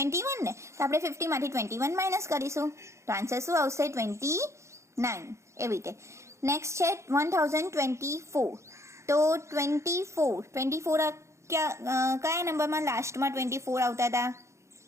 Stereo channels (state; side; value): late; left; 0.14 ms